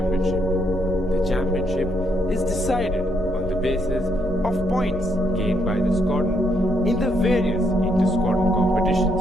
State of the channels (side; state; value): left; noise; hum, 17 dB below the sound